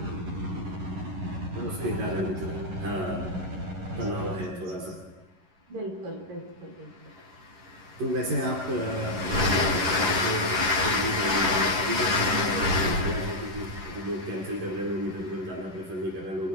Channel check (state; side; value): late; left; 11 ms